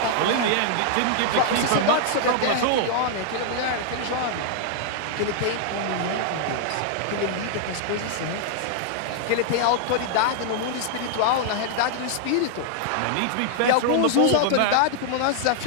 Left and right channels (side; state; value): both; different; correlation -0.01